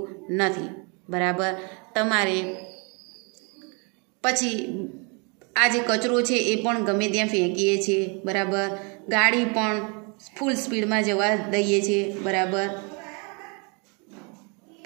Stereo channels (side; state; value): left; quieter; 33.7 dB